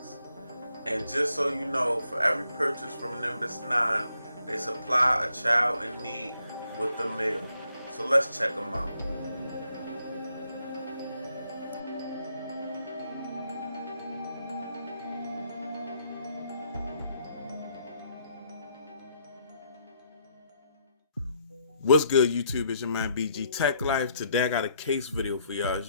And just so you know, for every purchase from Nimbus9, they supply a child in need with the meal. So let's check them out. What's good, YouTube? It's your man BG Tech Life. Today I got a case video for y'all.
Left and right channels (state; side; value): inverted; both; correlation -0.73